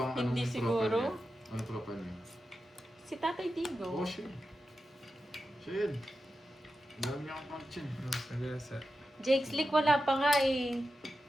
Hindi anong siguro. profile niya? Ano profile niya? Si Tatay Digong. Oh, siya. Siya yun. Ang dami niya akong pang-chin. Sagasa. Jake Slick wala pa nga eh.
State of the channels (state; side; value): normal; both; correlation 0.91